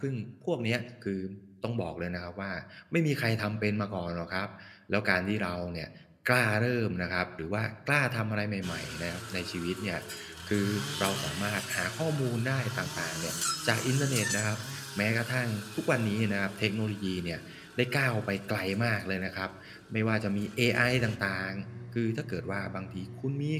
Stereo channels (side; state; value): both; identical; correlation 1.00